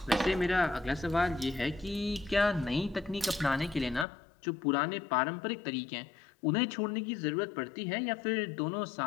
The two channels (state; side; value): drops out; right; at 4.0 s